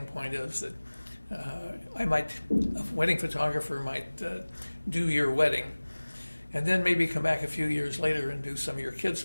is that a wedding photographer might do your wedding and then maybe come back a few years later and do some of your kids'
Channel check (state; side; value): inverted; both; correlation -1.00